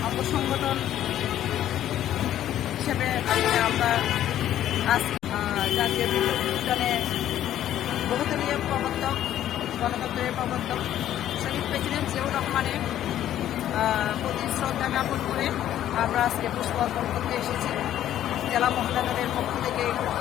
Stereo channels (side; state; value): right; quieter; 11.8 dB